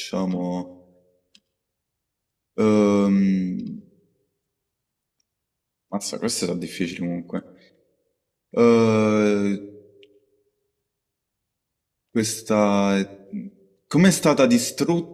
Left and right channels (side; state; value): both; identical; correlation 1.00